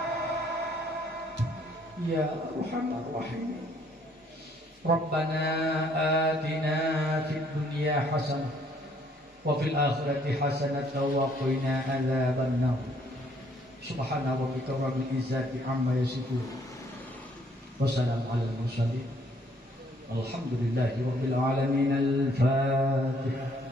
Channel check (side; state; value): both; normal; correlation 0.64